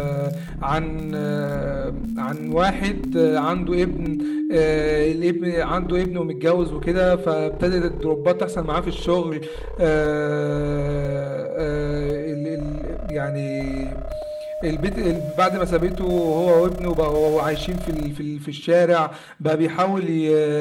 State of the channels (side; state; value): both; identical; correlation 1.00